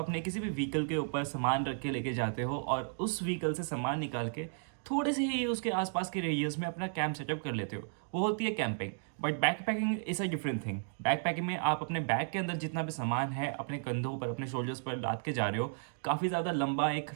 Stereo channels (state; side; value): silent; left; digital silence